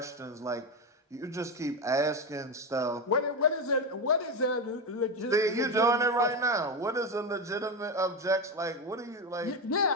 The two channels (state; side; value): normal; both; correlation 0.15